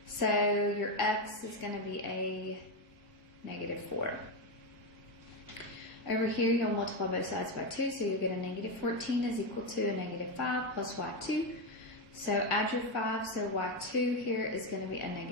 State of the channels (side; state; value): right; late; 1.6 ms